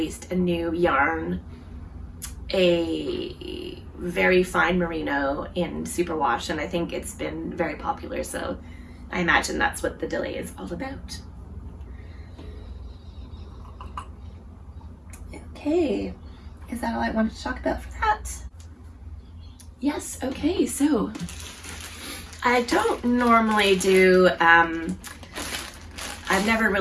a new yarn, a very fine merino in superwash, and I think it's been very popular, so I imagine that's what the delay is all about. Okay, is that all I wanted to talk about for that? Yes, okay, so I don't normally do, I've never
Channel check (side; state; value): both; identical; correlation 1.00